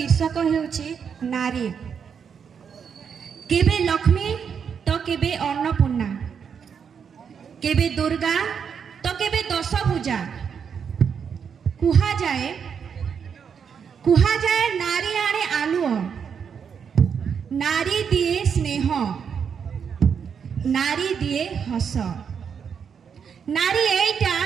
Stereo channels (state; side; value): quieter; left; 7.0 dB